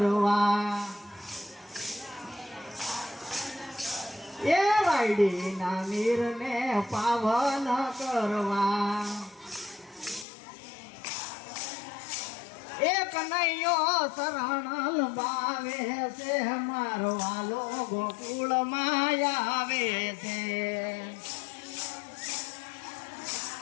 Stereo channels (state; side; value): drops out; right; at 10.2 s